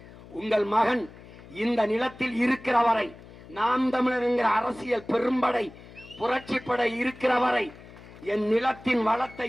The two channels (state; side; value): noise; left; hum, 19 dB below the sound